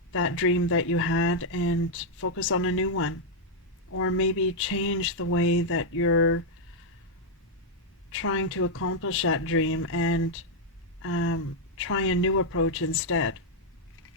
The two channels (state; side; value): normal; both; correlation -0.03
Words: that dream that you had and focus on a new one. Or maybe change the way that you're trying to accomplish that dream and try a new approach instead.